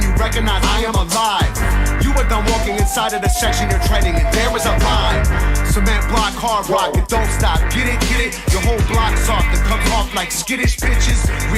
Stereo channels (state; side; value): identical; both; correlation 1.00